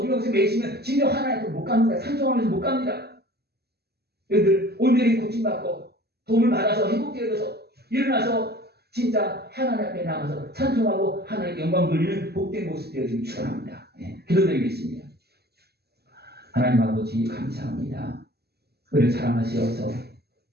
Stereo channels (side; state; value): left; late; 0.47 ms